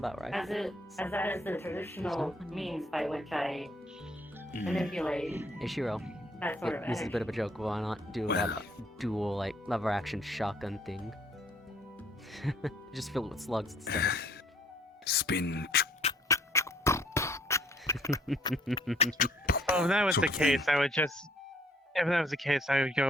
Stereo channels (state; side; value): normal; both; correlation 0.61